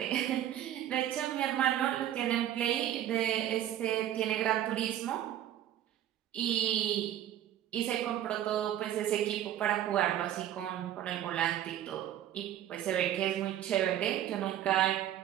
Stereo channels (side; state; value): left; quieter; 11.7 dB